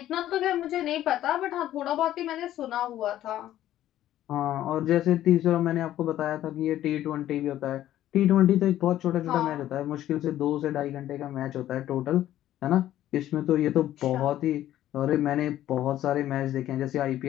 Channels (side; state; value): right; quieter; 12.9 dB